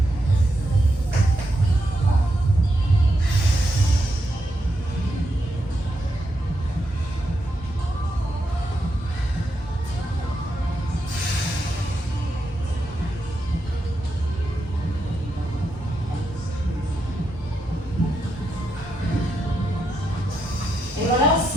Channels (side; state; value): both; normal; correlation 0.83